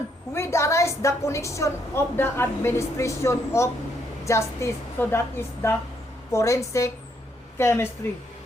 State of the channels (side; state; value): both; normal; correlation 0.73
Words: with arise the connection of the administration of justice. So that is the forensic chemistry.